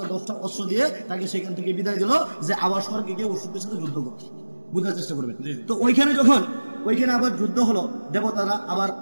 10টা অস্ত্র দিয়ে তাকে সেখান থেকে বিদায় দিল যে আবার স্বর্গে গিয়ে অসুরদের সাথে যুদ্ধ করতে। বুঝার চেষ্টা করবেন। তো ওইখানে আবার যুদ্ধ হলো, দেবতারা আবার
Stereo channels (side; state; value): both; inverted; correlation -1.00